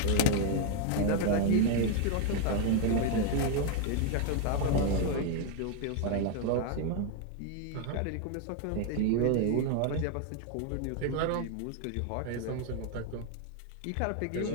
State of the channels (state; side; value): different; both; correlation 0.00